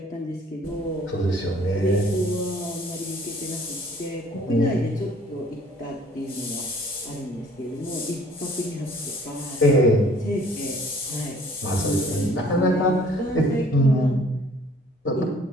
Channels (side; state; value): both; normal; correlation 0.55